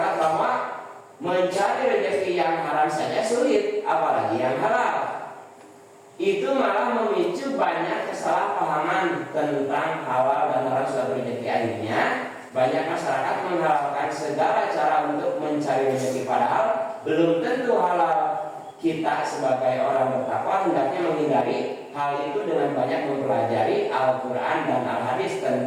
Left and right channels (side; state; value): both; identical; correlation 1.00